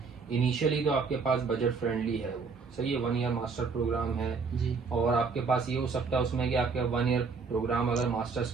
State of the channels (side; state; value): left; quieter; 4.9 dB